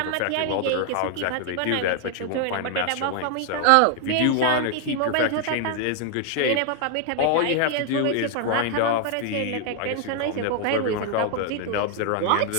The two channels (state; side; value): different; both; correlation 0.00